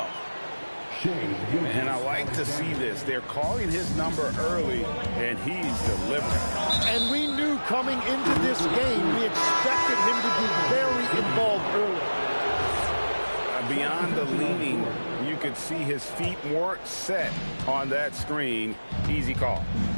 And I like to see this. They're calling his number early, and he's delivering. And we knew coming into this game, we expected him to be very involved early. Beyond the leaning, you could see his feet more set on that screen. Easy call.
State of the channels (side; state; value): both; inverted; correlation -1.00